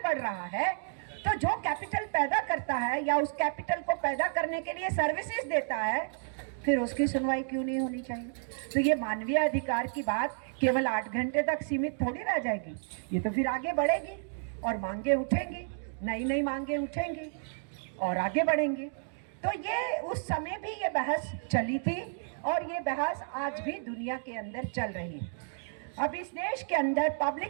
बढ़ रहा है, तो जो कैपिटल पैदा करता है या उस कैपिटल को पैदा करने के लिए सर्विसेज देता है, फिर उसकी सुनवाई क्यों नहीं होनी चाहिए? तो ये मानवीय अधिकार की बात केवल 8 घंटे तक सीमित थोड़ी रह जाएगी, ये तो फिर आगे बढ़ेगी और मांगे उठेंगी, नई नई मांगे उठेंगी और आगे बढ़ेंगे। तो ये उस समय भी ये बहस चली थी और ये बहस आज भी दुनिया के अंदर चल रही है। अब इस देश के अंदर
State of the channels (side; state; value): left; silent; digital silence